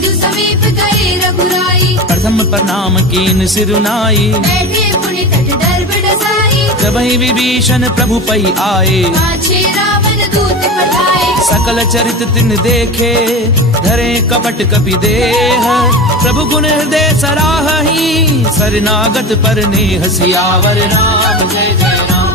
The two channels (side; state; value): both; normal; correlation 0.27